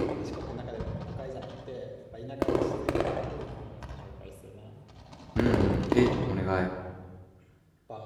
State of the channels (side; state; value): both; identical; correlation 1.00